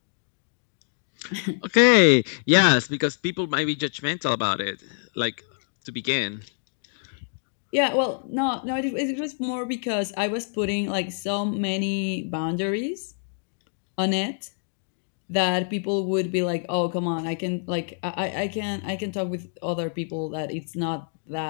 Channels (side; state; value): right; silent; digital silence